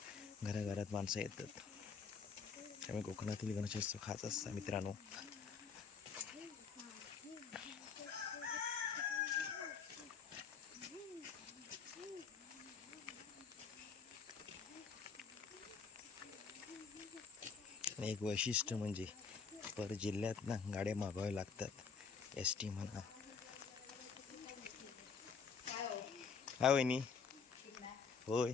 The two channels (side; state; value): right; quieter; 5.8 dB